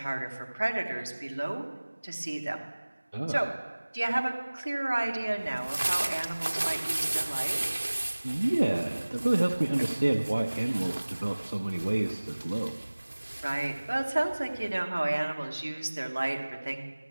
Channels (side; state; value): both; inverted; correlation -1.00